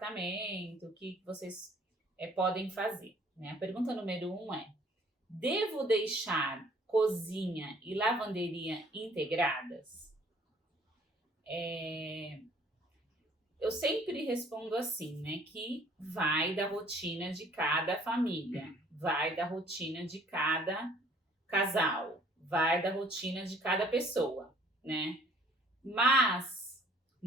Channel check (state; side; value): normal; both; correlation 0.57